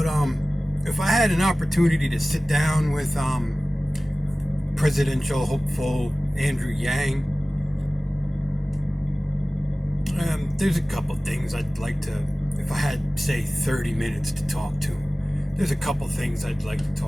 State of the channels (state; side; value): normal; both; correlation 0.97